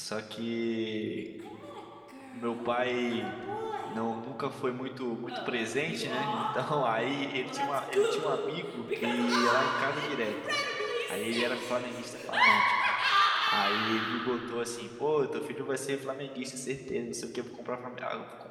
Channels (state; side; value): identical; both; correlation 1.00